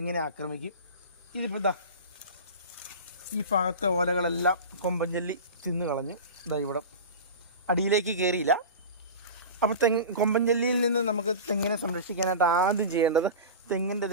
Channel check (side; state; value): both; inverted; correlation -0.30